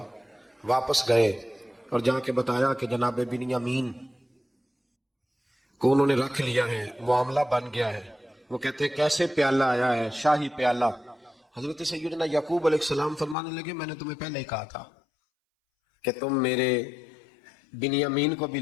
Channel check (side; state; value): right; drops out; at 13.4 s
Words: واپس گئے اور جا کے بتایا کہ جناب بنیامین کو انہوں نے رکھ لیا ہے، معاملہ بن گیا ہے۔ وہ کہتے ہیں کیسے پیالہ آیا ہے، شاہی پیالہ۔ حضرت سیدنا یعقوب علیہ السلام فرمانے لگے میں نے تمہیں پہلے ہی کہا تھا کہ تم میرے بنیامین کو بھی